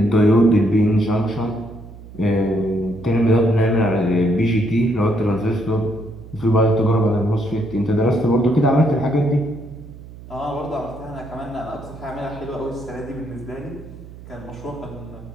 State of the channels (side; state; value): right; noise; hum, 17 dB below the sound